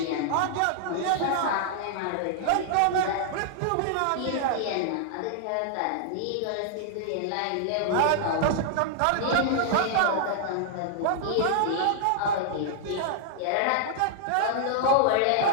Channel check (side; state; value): both; different; correlation -0.01